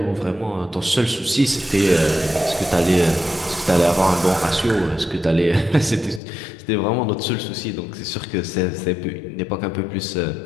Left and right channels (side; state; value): right; drops out; at 6.2 s